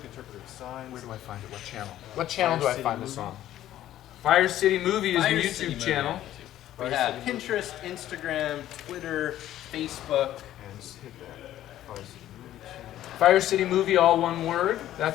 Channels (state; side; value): quieter; right; 12.9 dB